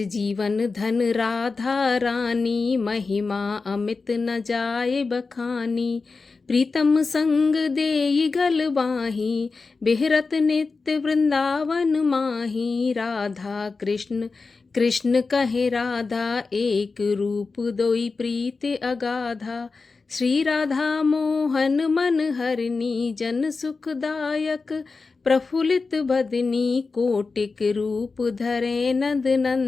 धन राधा रानी, महिमा अमित न जाए बखानी। प्रीतम संग देई गल बाही, बिहरत नित्य वृंदावन माही। राधा कृष्ण कृष्ण कहे राधा, एक रूप दोई प्रीत अगाधा। श्री राधा मोहन मन हरिणी, जन सुखदायक प्रफुल्लित बदनी। कोटिक रूप धरे नंद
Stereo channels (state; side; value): quieter; right; 4.2 dB